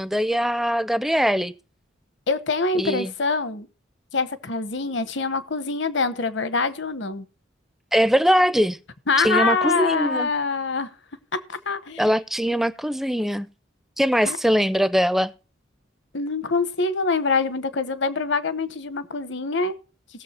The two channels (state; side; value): normal; both; correlation 0.48